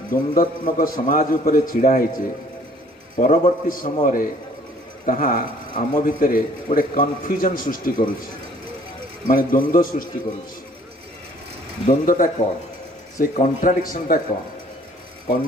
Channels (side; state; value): both; normal; correlation 0.57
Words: द्वंद्वात्मक समाज उपर छिड़ा होचे परवर्ती समय रे ताहा आम भितर गोटे कन्फ्यूजन सृष्टि करुछि माने द्वंद्व सृष्टि करुछि। द्वंद्वटा कौन से कॉन्ट्राडिक्शनटा कौन